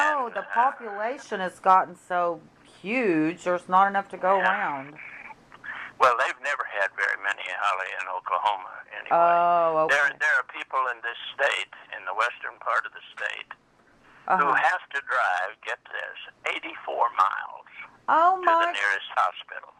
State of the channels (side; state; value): both; identical; correlation 1.00